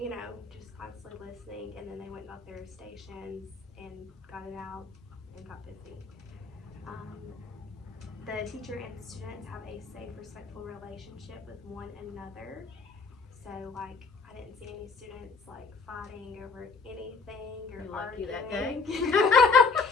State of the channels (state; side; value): quieter; right; 4.5 dB